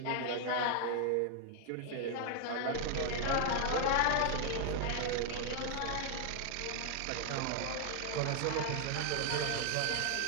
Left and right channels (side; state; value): both; different; correlation 0.00